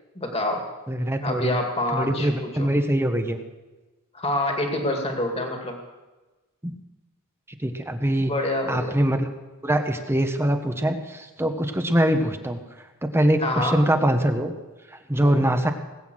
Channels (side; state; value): both; normal; correlation 0.73